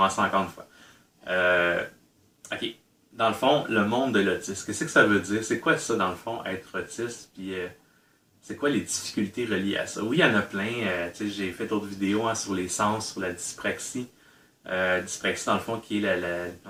encore une fois. Euh, ok. Dans le fond, le monde de l'autisme, qu'est-ce que ça veut dire? C'est quoi ça, dans le fond, être autiste? Puis c'est quoi les difficultés reliées à ça? Oui, il y en a plein. J'ai fait d'autres vidéos sur les sens, sur la dyspraxie. Dyspraxie, dans le fond, qui est dans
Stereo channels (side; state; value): both; identical; correlation 1.00